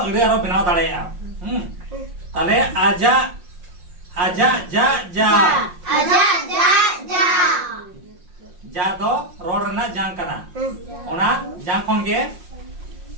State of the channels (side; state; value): left; late; 5.6 ms